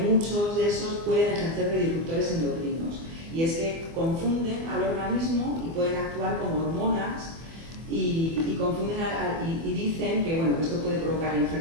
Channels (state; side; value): late; left; 24 ms